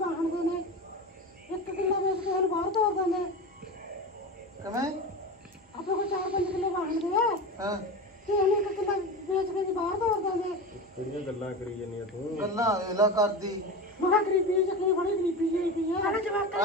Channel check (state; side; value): normal; both; correlation 0.26